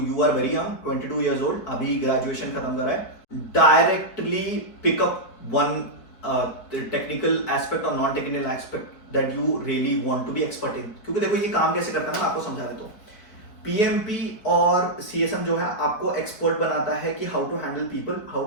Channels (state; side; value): late; right; 4.6 ms